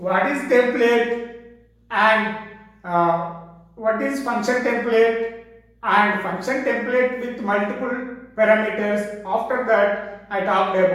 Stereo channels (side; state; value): both; identical; correlation 1.00